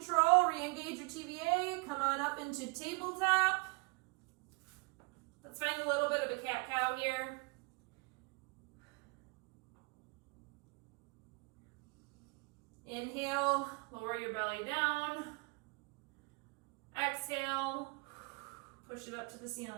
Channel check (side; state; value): left; quieter; 30.2 dB